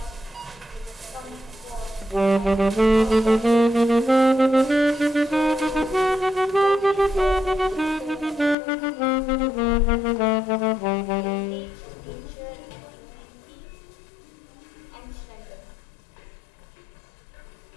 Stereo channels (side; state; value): right; drops out; at 8.6 s